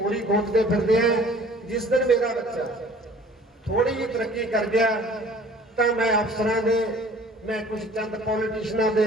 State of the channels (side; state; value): both; normal; correlation 0.51